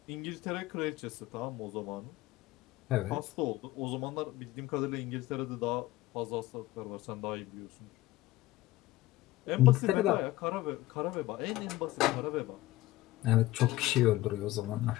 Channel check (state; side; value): quieter; right; 17.0 dB